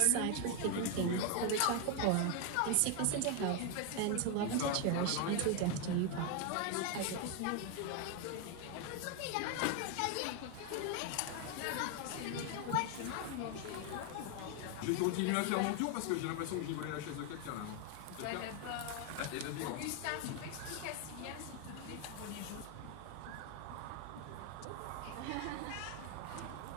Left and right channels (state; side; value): different; both; correlation 0.01